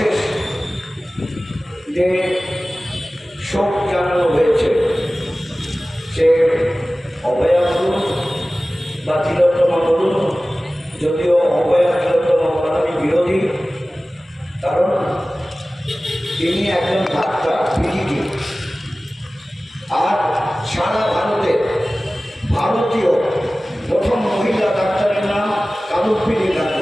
যে শোক জানানো হয়েছে, সে অভয়া বলুন বা তিলোত্তমা বলুন, যদিও অভয়া তিলোত্তমা আমি বিরোধী, কারণ তিনি একজন ডাক্তার, পিজিটি, আর সারা ভারতে ভারতীয় প্রথম মহিলা ডাক্তারের নাম কাদম্বিনী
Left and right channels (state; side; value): normal; both; correlation 0.97